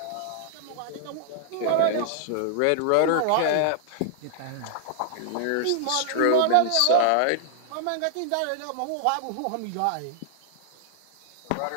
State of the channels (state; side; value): different; both; correlation -0.01